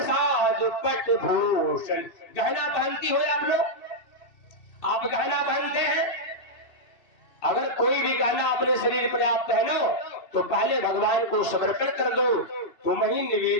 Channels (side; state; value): right; late; 2.6 ms